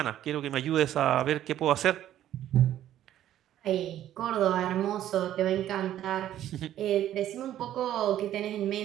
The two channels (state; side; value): quieter; left; 12.1 dB